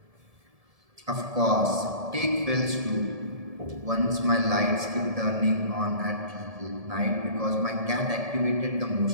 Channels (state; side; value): late; left; 1.7 ms